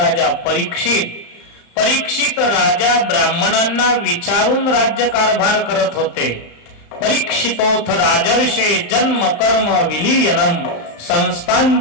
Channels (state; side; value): late; right; 35 ms